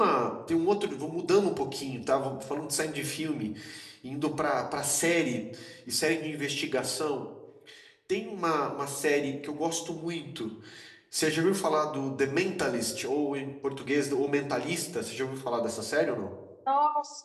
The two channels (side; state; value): both; identical; correlation 1.00